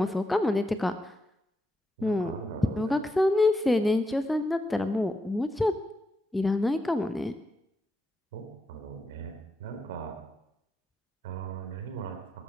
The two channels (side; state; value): both; normal; correlation 0.85